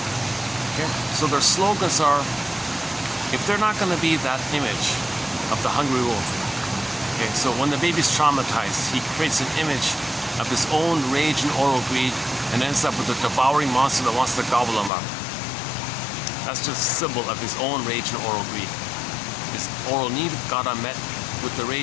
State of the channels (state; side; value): drops out; right; at 14.9 s